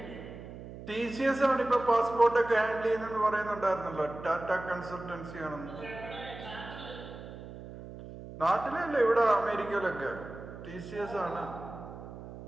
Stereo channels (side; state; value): right; noise; hum, 13 dB below the sound